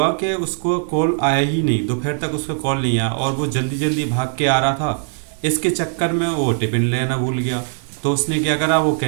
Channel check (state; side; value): silent; left; 60 dB below the other